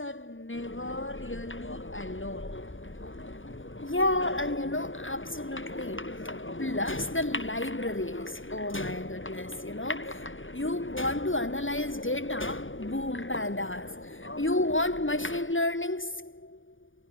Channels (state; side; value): late; right; 0.57 ms